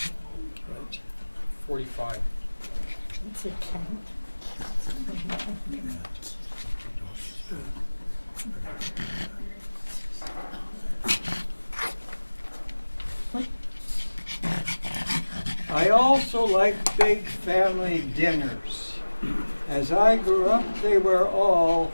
45. It's a 10. also like big family dinners. As I grew up, they were all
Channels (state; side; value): inverted; both; correlation -1.00